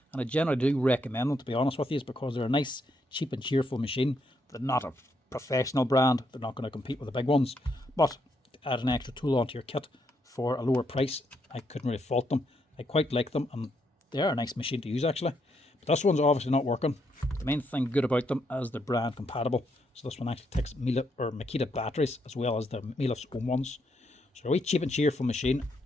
and I generally do recommend them, to be honest with you, because they're a nice, cheap and cheerful machine. They're not a professional brand, they're not going to compete with the big ones, but to add an extra tool onto your kit for a lower price, I couldn't really fault them. I quite like them and they are a nice machine to use actually. But this one's obviously not working. The main thing good about them is they're brand compatible. So this one actually takes Mellif or Makita batteries as well as the Mellif's own ones. So a wee cheap and cheerful machine.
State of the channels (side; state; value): both; normal; correlation 0.77